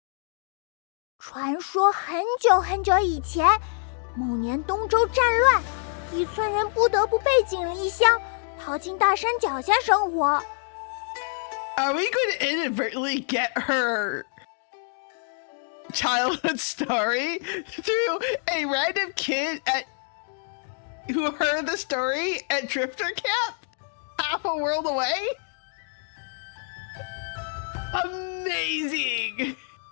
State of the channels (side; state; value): right; silent; 60 dB below the other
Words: 传说很久很久以前，某年东周战乱，一村人不得不背井离乡，逃进大山脚下生活。Are we going to inadvertently get her childhood story through a random kid who heard the story at Drifter Camp half a world away? Amazing!